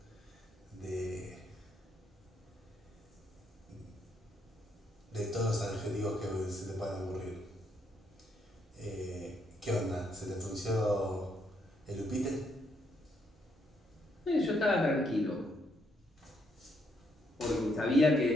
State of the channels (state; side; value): normal; both; correlation 0.74